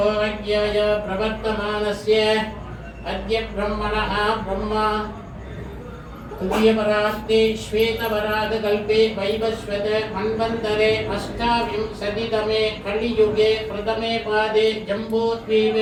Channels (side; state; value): both; identical; correlation 1.00